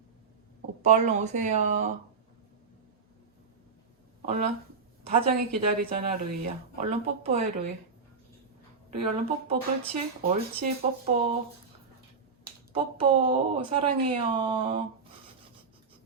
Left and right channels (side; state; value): left; quieter; 5.1 dB